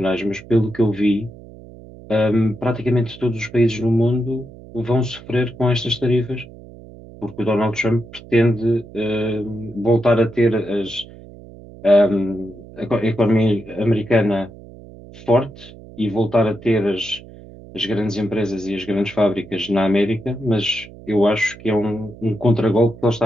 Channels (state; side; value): noise; right; hum, 19 dB below the sound